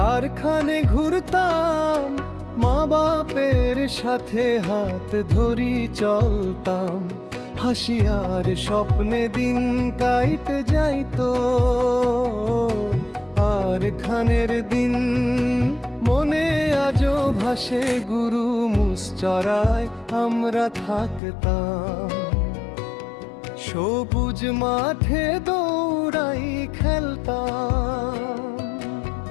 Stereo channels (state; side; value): drops out; right; at 21.2 s